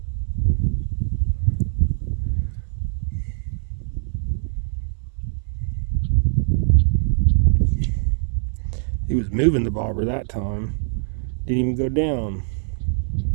He was moving the bobber that time. Didn't even go down.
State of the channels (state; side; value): silent; left; 64 dB below the other